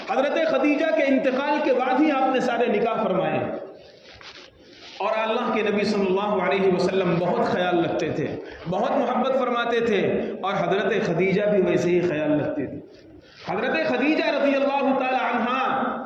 حضرت خدیجہ کے انتقال کے بعد ہی آپ نے سارے نکاح فرمائے، اور اللہ کے نبی صلی اللہ علیہ وسلم بہت خیال رکھتے تھے، بہت محبت فرماتے تھے، اور حضرت خدیجہ بھی ویسے ہی خیال رکھتے تھے۔ حضرت خدیجہ رضی اللہ تعالی عنہا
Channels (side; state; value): both; identical; correlation 1.00